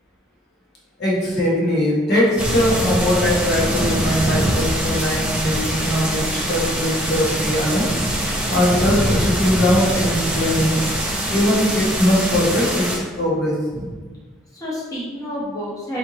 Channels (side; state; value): both; normal; correlation 0.60